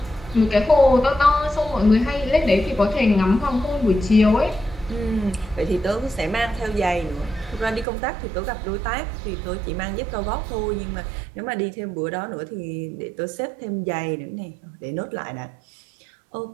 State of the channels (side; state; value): left; drops out; at 7.9 s